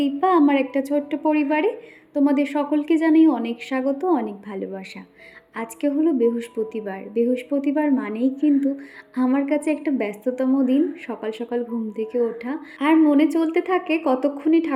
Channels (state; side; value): identical; both; correlation 1.00